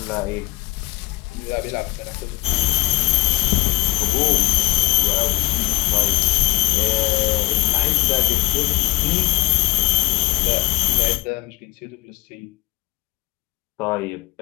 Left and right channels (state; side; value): quieter; right; 20.6 dB